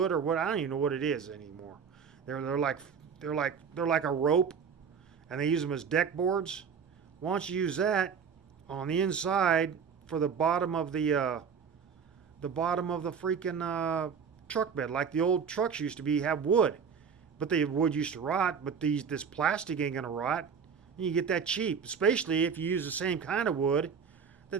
or what, I don't even know what it is anymore. They're like a rope, and they use them as deck boards. Why don't you use that on the inside for the bottom of the freaking truck bed, like the old trucks used to have wood, but the wood used to rot. But this plastic ain't gonna rot. And you get that cheap, especially if you use the same kind of wood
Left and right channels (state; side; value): quieter; left; 6.5 dB